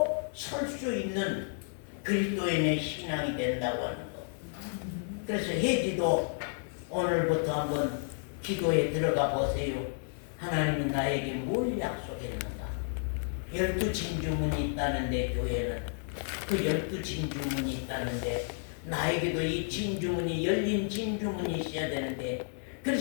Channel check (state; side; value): silent; right; digital silence